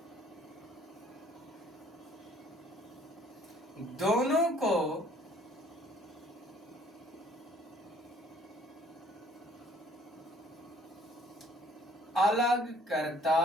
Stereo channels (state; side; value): normal; both; correlation 0.58